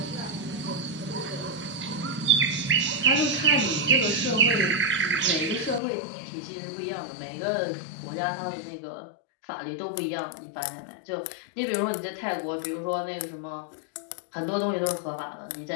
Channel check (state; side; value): drops out; right; at 5.8 s